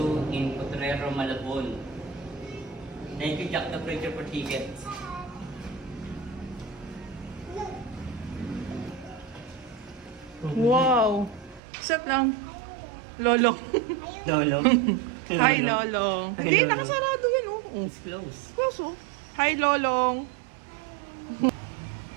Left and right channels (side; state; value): left; drops out; at 11.6 s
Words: in Potrero, Malabon. Thank you, Jack the Preacher, for tickets. Wow! Sat lang. Lolong. Lolong. Hi, Lolong. Hi, Hindi, Lolong. nakasarado yan, oh. It's close. Close, oh. Hi, Lolong.